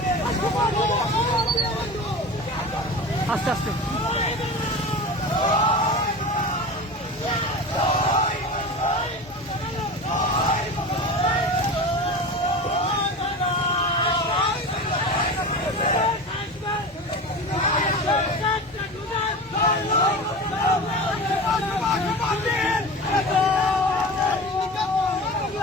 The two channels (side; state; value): both; normal; correlation 0.30